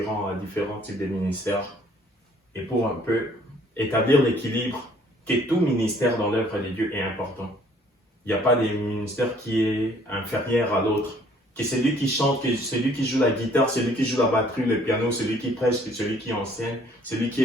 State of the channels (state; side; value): normal; both; correlation 0.59